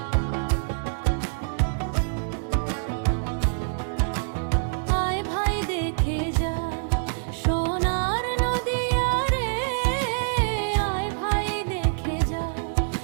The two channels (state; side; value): silent; left; 57 dB below the other